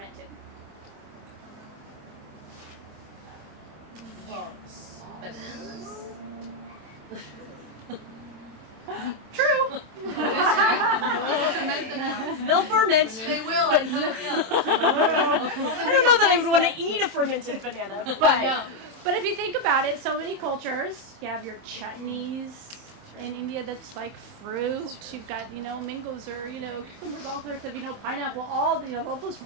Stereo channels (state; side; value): late; left; 27 ms